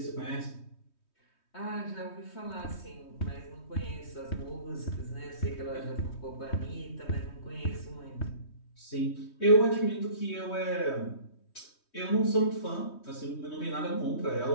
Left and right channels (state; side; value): late; right; 3.2 ms